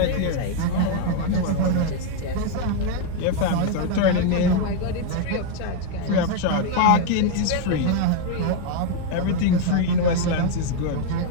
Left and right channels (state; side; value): different; both; correlation 0.00